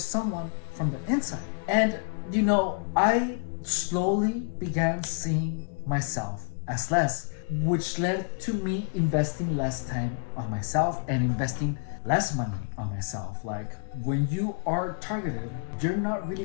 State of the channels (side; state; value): right; silent; digital silence